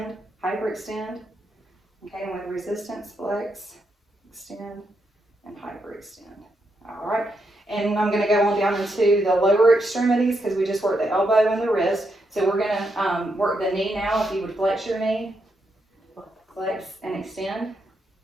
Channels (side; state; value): both; normal; correlation 0.81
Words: hyperextend. Okay, and with resistance, flex, extend, and hyperextend. All right, and I'm gonna go on down into the lower extremities because we just worked the elbow and the wrist. So we're gonna work the knee now. If you would flex your knee, flex and extend.